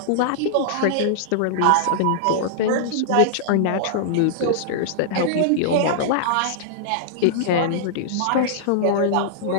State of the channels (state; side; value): different; both; correlation -0.01